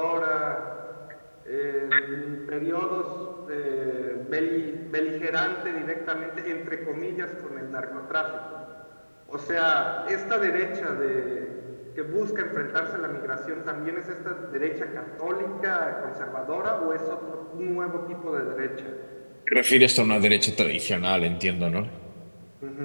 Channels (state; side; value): inverted; both; correlation -1.00